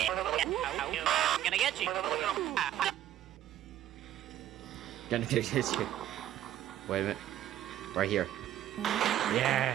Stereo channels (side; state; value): left; quieter; 12.2 dB